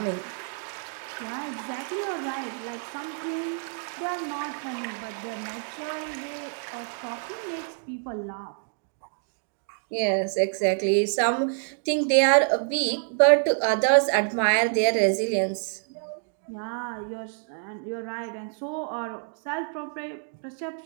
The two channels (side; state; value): left; silent; 55 dB below the other